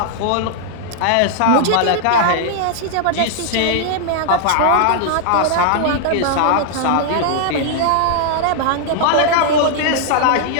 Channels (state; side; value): different; both; correlation -0.01